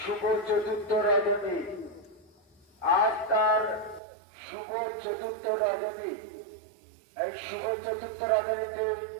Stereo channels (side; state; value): left; drops out; at 4.0 s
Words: শুভ চতুর্থ রজনী। এই শুভ চতুর্থ রজনীতে